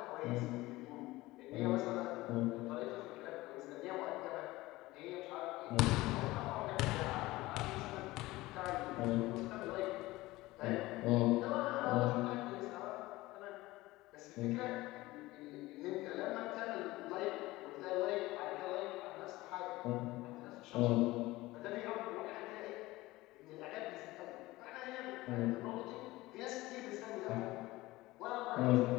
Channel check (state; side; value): quieter; right; 19.1 dB